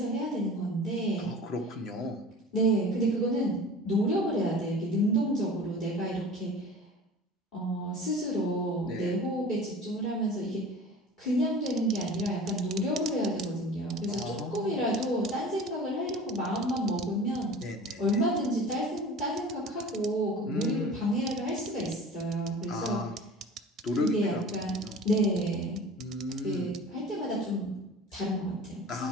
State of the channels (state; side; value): normal; both; correlation 0.39